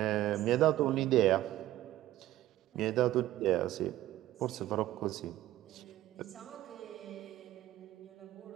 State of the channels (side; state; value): left; quieter; 14.7 dB